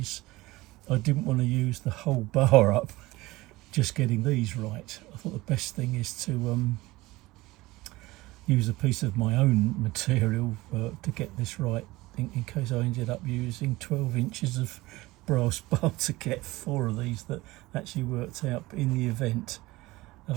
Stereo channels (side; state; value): left; quieter; 19.8 dB